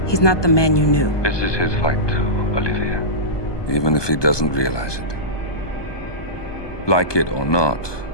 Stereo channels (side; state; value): right; late; 1.2 ms